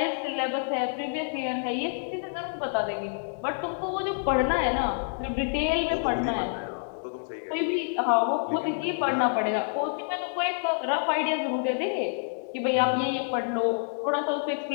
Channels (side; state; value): right; silent; digital silence